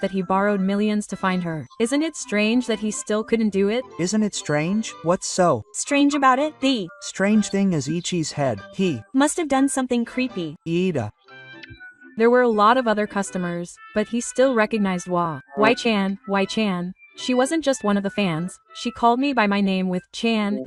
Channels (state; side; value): identical; both; correlation 1.00